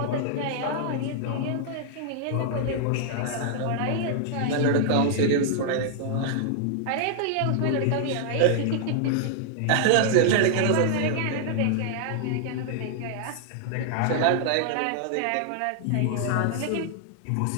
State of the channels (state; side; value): different; both; correlation -0.01